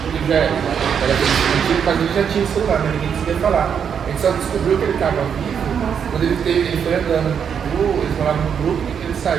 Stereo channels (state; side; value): quieter; left; 7.5 dB